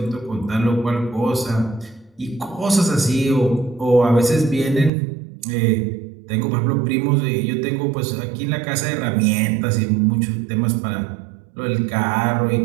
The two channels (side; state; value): left; drops out; at 4.9 s